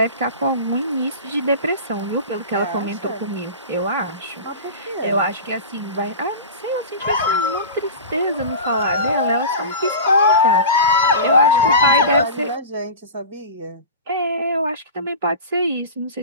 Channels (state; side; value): inverted; both; correlation -0.32